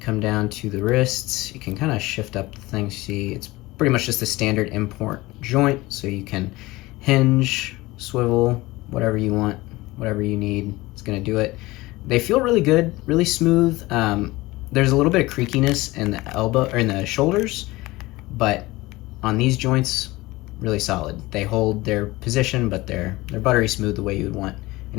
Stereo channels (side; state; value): right; quieter; 20.2 dB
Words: down to the wrists. You can kind of shift up the thing. See, it's pretty much just a standard import joint, so you can hinge, swivel, whatever you want, whatever you need, it's gonna do it. They feel really good, really smooth. There's a little bit of creakiness in the elbow or in the shoulders, but on these joints, really solid. They hold their position, but they're buttery smooth the way you would want